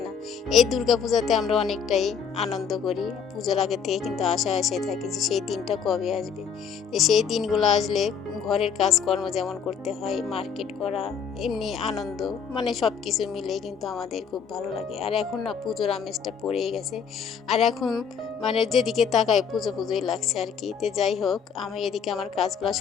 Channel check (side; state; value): right; quieter; 6.7 dB